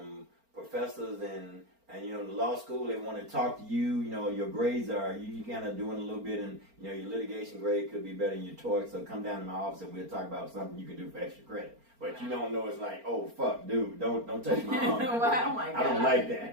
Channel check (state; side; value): late; left; 4.4 ms